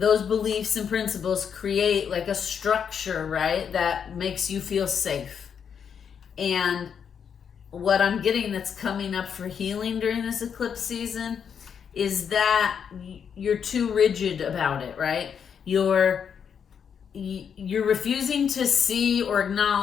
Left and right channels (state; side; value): quieter; right; 7.4 dB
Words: beliefs and principles create like a structure, right? That makes you feel safe. And what I'm getting that's coming up for healing during this eclipse season is that you're too rigid about it, right? You're refusing to see or